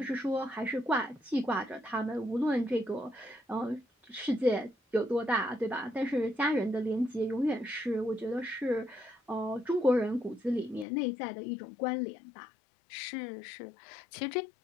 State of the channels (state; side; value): drops out; right; at 10.9 s